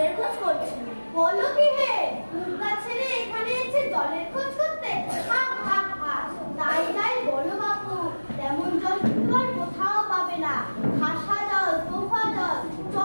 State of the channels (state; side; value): inverted; both; correlation -1.00